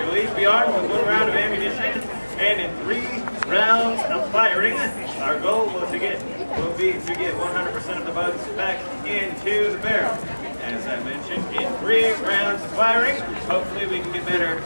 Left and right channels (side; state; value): both; inverted; correlation -1.00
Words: You'll each be armed with 1 round of ammunition, and in 3 rounds of firing, our goal will be to get 100% of the bugs back into the barrel. As I mentioned, in 3 rounds of firing, hopefully we can get better